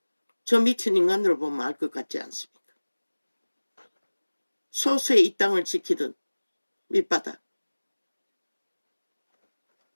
저 미친 인간들을 보면 알 것 같지 않습니까? 소수의 이 땅을 지키던 밑바닥,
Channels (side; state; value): both; inverted; correlation -1.00